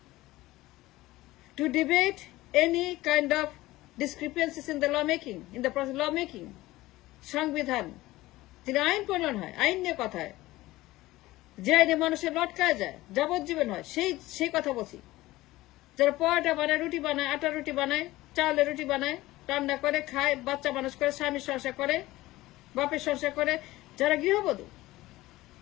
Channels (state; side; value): quieter; right; 17.9 dB